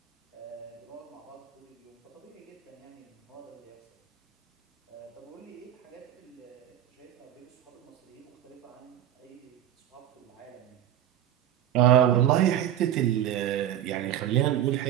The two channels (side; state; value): left; quieter; 11.3 dB